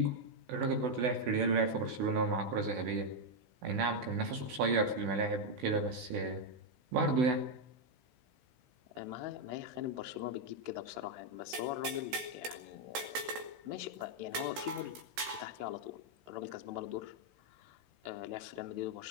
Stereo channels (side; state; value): left; late; 16 ms